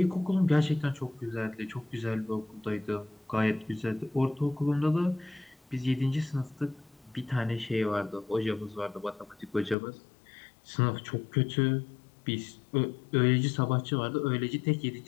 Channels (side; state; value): right; drops out; at 9.8 s